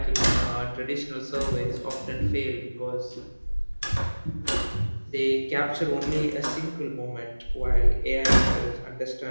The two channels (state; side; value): inverted; both; correlation -1.00